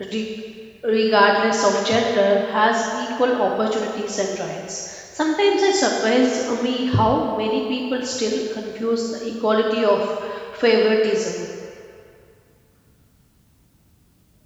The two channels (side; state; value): both; identical; correlation 1.00